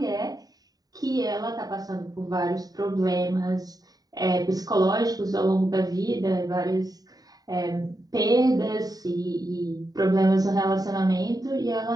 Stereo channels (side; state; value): left; late; 0.18 ms